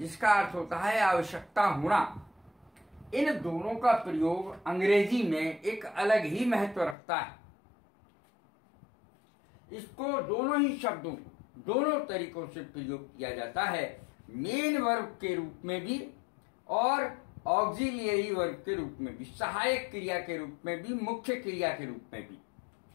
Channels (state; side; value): drops out; right; at 7.0 s